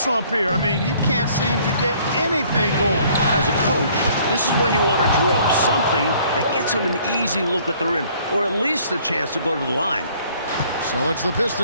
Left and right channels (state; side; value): inverted; both; correlation -0.59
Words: here. I mean, he can't seem to get anything going. As a coach, this is when you want to draw up something that gets him an easy look at the rim, or at least a chance to go to the line. So it's the